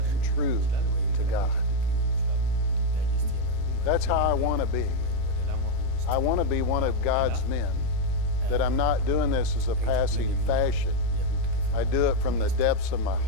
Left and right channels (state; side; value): different; both; correlation 0.01